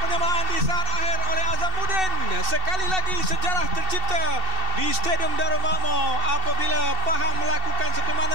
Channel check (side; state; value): left; late; 2.7 ms